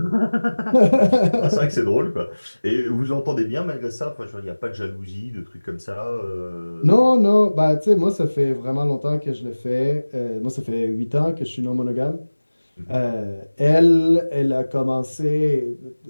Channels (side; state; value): both; inverted; correlation -1.00